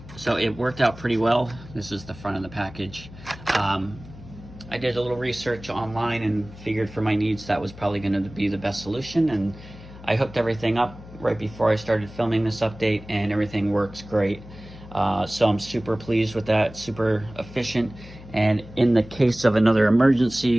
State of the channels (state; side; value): noise; left; hum, 17 dB below the sound